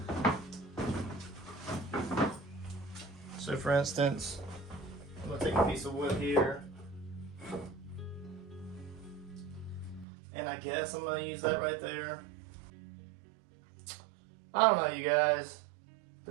So for instance, I'm going to take a piece of wood here. And I guess I'm going to use that right there. I don't know, you guys.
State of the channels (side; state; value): left; drops out; at 10.1 s